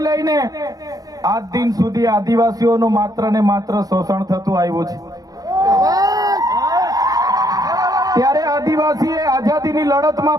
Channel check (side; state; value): left; late; 0.18 ms